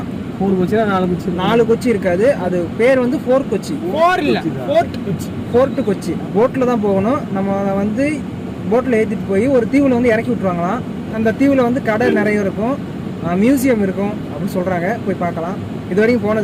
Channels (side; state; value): both; identical; correlation 1.00